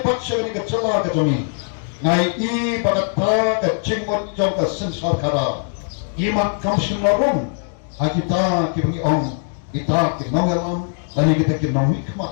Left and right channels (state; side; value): silent; right; 65 dB below the other